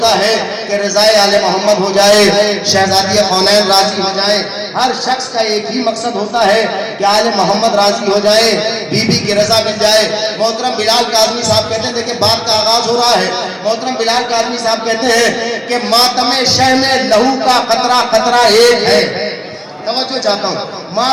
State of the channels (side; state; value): both; identical; correlation 1.00